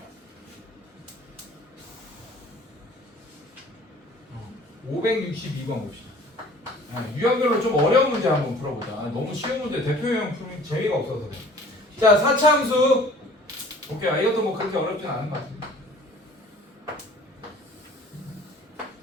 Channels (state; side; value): normal; both; correlation 0.49